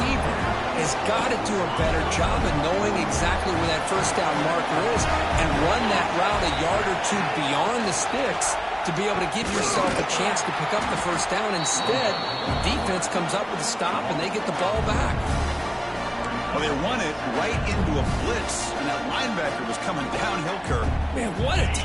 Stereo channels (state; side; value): identical; both; correlation 1.00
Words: has got to do a better job of knowing exactly where that first down marker is and run that route a yard or two beyond the sticks to be able to give yourself a chance to pick up the first down. Instead, the defense comes up with a stop and they get the ball back. Well, they run it right into a blitz, and that linebacker was coming downhill, Kirk. Man, what a